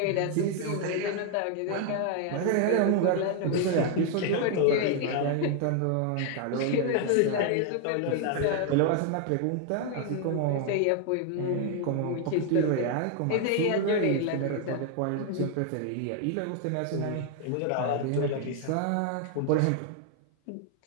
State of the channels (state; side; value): different; both; correlation 0.00